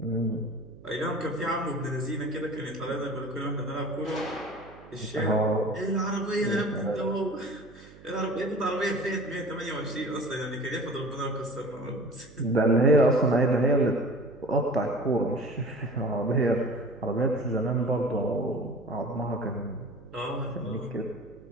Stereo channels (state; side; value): noise; right; hum, 21 dB below the sound